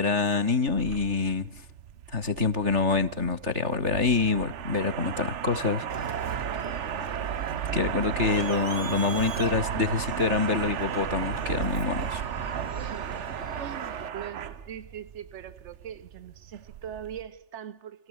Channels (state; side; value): late; left; 3.4 ms